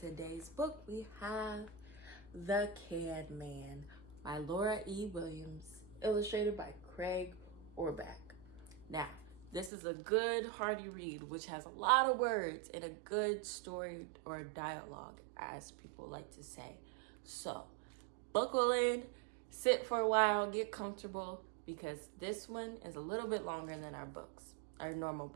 book we have The Can Man by Laura E. Williams, illustrated by Craig Orback. Now, this is a good, hearty read, which has a lot of words and a good story or dialogue, as people like to say. So, buckle in, sit for a while, get comfortable, because this one is a little bit longer than our books. Our normal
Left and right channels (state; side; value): drops out; left; at 9.7 s